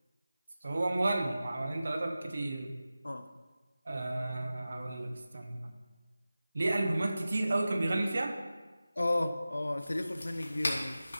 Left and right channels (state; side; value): inverted; both; correlation -0.95